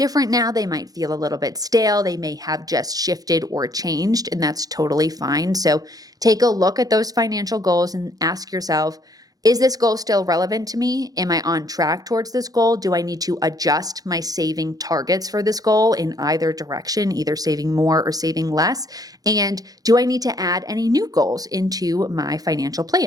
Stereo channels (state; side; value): late; left; 0.18 ms